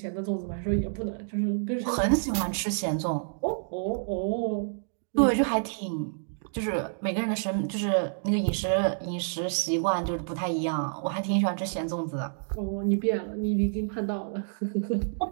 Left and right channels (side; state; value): left; silent; digital silence